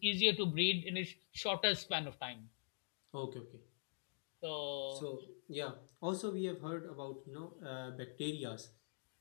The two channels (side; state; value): right; silent; digital silence